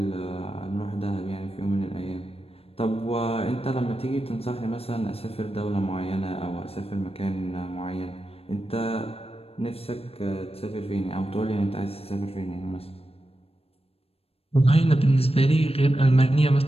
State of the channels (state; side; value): late; right; 0.28 ms